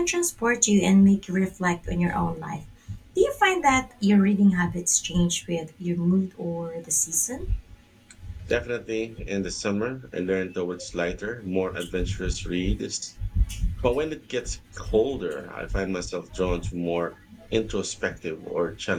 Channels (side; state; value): both; identical; correlation 1.00